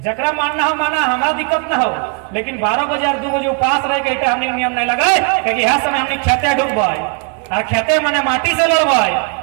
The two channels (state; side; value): quieter; left; 37.2 dB